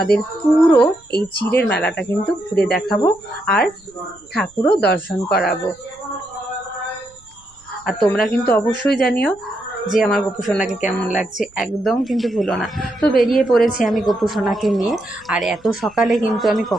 পুরো এই চিড়ের মেলাটা কিন্তু ঘুরে দেখাবো, আর ঠাকুরও দর্শন করাবো। আর তোমরা কিন্তু অবশ্যই জানিও যে আমার গোপু সোনাকে কেমন লাগছে, একদম কিন্তু ভুলো না। তো বেরিয়ে পড়েছি আমি গোপু সোনাকে নিয়ে। আর এত সকালে কিন্তু আমি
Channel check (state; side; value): noise; right; rumble, 29 dB below the sound